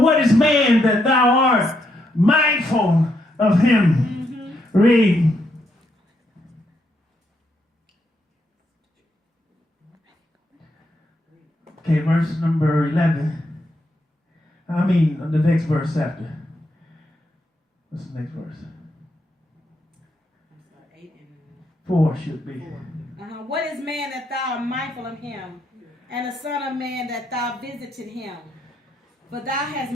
is man that thou art mindful of him? Read. Okay, verse number 11. The next verse after. What's the next verse? 4 should be. What is man that thou art mindful of him, and the son of man that thou visited him? But thou hast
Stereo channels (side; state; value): both; normal; correlation 0.78